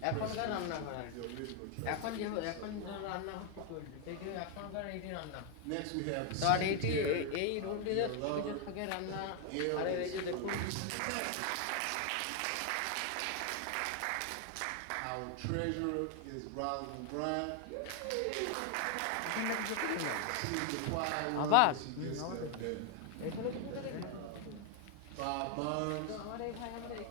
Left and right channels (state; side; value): different; both; correlation 0.00